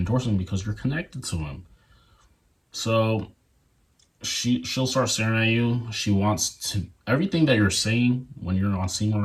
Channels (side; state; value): both; identical; correlation 1.00